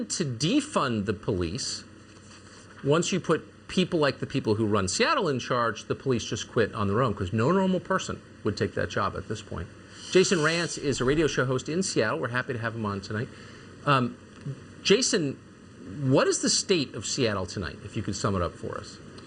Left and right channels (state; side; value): identical; both; correlation 1.00